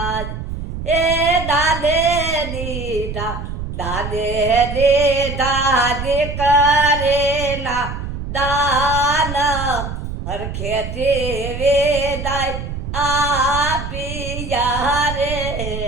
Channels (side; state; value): right; noise; rumble, 6 dB below the sound